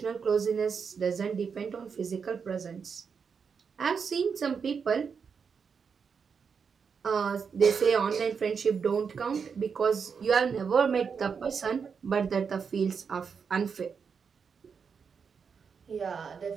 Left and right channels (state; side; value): quieter; left; 6.1 dB